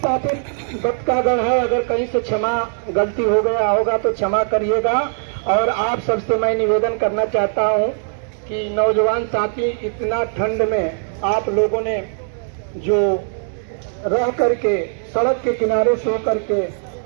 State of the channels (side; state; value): left; silent; digital silence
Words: बतकागण है, अगर कहीं से क्षमा गलती हो गया होगा तो क्षमा करिएगा। और आप सबसे मैं निवेदन करना चाहता हूं कि नौजवान साथी, इतना ठंड में आप लोगों ने जो रह करके सड़क के किनारे सो करके,